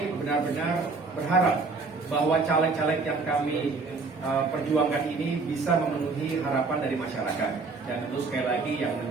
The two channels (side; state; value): left; quieter; 4.1 dB